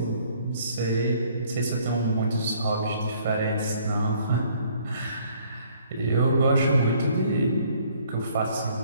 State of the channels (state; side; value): inverted; both; correlation -0.61